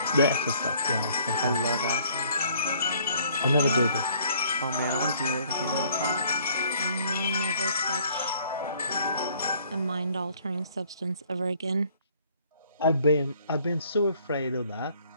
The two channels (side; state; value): both; inverted; correlation -0.61